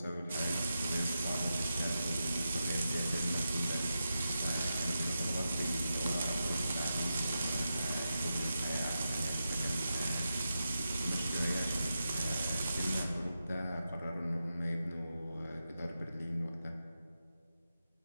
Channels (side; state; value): both; inverted; correlation -0.89